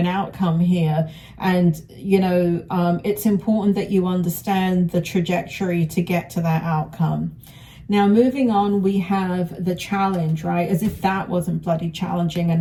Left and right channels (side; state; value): both; identical; correlation 1.00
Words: outcome here. And, it's important that you understand the trajectory to get to that outcome. Now, moving on, we have the challenge, right? As if that wasn't bloody challenging